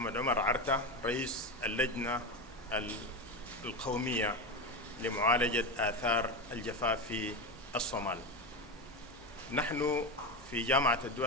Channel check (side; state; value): both; normal; correlation 0.18